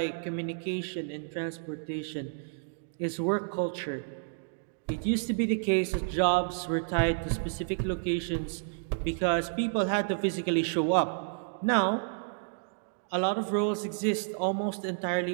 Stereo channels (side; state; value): left; silent; digital silence